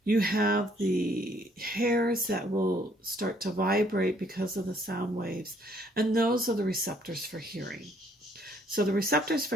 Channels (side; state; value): both; normal; correlation 0.65